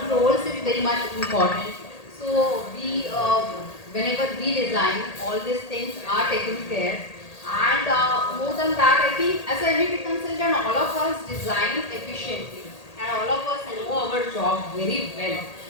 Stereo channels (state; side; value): late; right; 1.8 ms